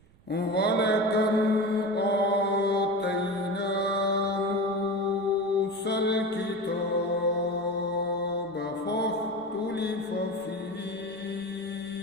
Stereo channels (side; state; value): right; noise; rumble, 28 dB below the sound